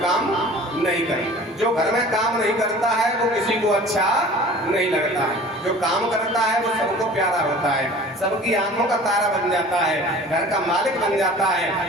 काम नहीं करता। जो घर में काम नहीं करता है वो किसी को अच्छा नहीं लगता है, जो काम करता है वो सबको प्यारा होता है, सबकी आंखों का तारा बन जाता है, घर का मालिक बन जाता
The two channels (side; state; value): both; normal; correlation 0.44